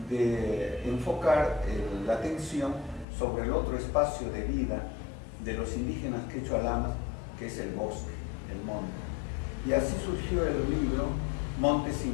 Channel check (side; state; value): right; drops out; at 3.1 s